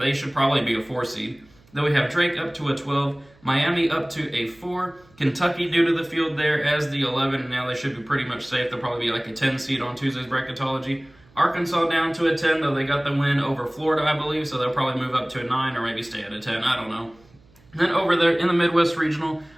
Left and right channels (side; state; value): right; noise; hum, 29 dB below the sound